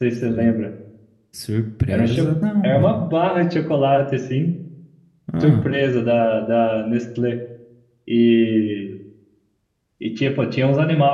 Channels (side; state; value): both; identical; correlation 1.00